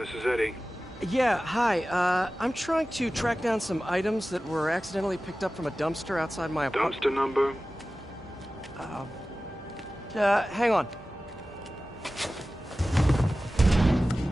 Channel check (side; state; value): both; normal; correlation 0.96